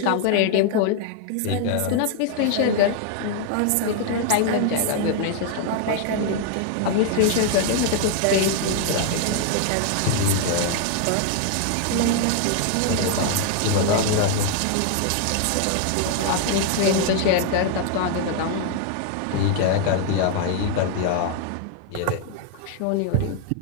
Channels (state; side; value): different; both; correlation 0.00